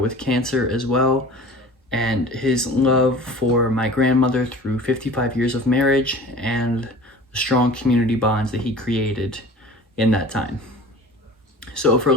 cancer as well, and his love for my grandmother through 55 years of marriage and the strong community bonds that he created in that time. So for a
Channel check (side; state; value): both; normal; correlation 0.41